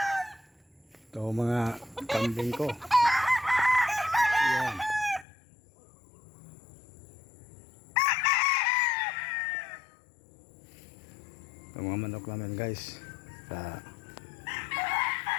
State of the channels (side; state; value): right; drops out; at 5.2 s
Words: Ito mga kambing ko. Yan. Ito mga manok namin guys.